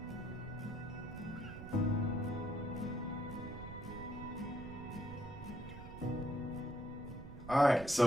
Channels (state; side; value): noise; right; rumble, 12 dB below the sound